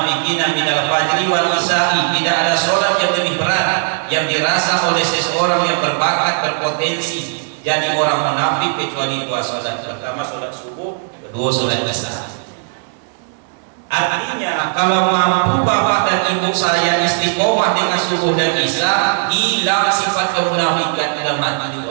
minal fajri wal isya'i. Tidak ada sholat yang lebih berat yang dirasa oleh seseorang yang berbakat, berpotensi jadi orang munafik kecuali dua sholat. Pertama sholat subuh, kedua sholat isya. Artinya kalau mampu bapak dan ibu saya istiqomah dengan subuh dan isya, hilang sifat kemunafikan dalam hati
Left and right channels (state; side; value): silent; left; digital silence